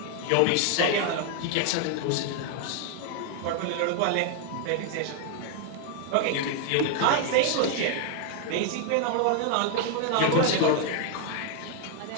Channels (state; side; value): different; both; correlation 0.00